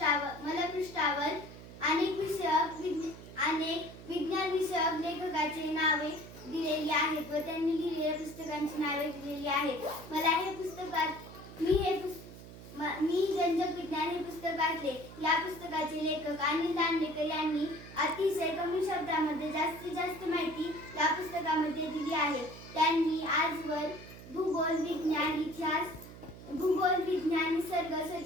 अनेक विज्ञान विषयक लेखकाची नावे दिलेली आहेत व त्यांनी लिहिलेल्या पुस्तकांची नावे दिलेली आहेत. मी रंजक विज्ञान हे पुस्तक वाचले. या पुस्तकाचे लेखक अनिल दांडेकर यांनी अतिशय कमी शब्दामध्ये जास्तीत जास्त माहिती या पुस्तकामध्ये दिली आहे. त्यांनी आजवर भूगोल, विज्ञान, इतिहास, निसर्ग,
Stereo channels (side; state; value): right; noise; hum, 15 dB below the sound